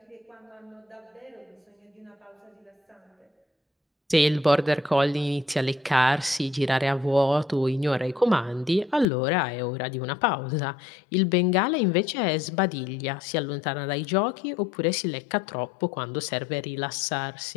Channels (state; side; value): drops out; right; at 9.1 s